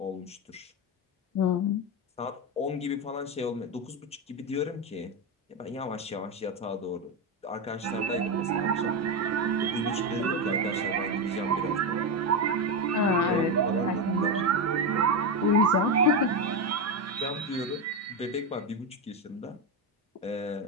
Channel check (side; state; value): both; normal; correlation 0.11